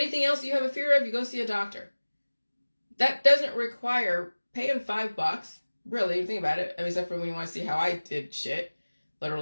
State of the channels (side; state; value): both; inverted; correlation -1.00